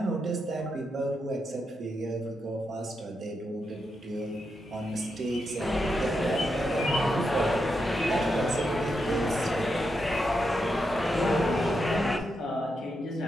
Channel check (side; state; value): both; normal; correlation 0.84